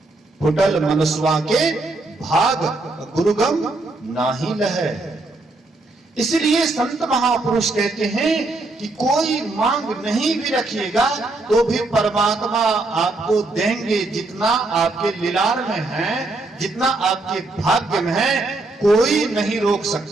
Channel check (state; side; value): quieter; left; 3.1 dB